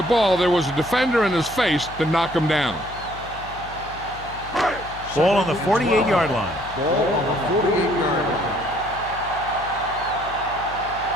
ball, there was a defender in his face to knock him down. Ball on the 48-yard line. Ball on the 48-yard line.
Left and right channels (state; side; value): noise; left; hum, 16 dB below the sound